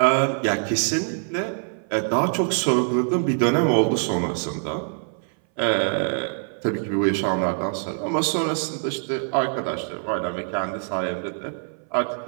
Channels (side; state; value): left; silent; 59 dB below the other